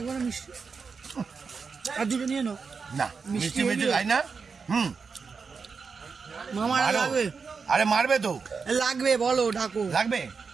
না মিষ্টি আর 2টো নিয়ে নাও না মিষ্টি মিষ্টি খাই না মামার মারো। লাগবে আরে মারবে তো লাগবে বলো ডাকো লাগবে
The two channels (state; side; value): quieter; left; 5.2 dB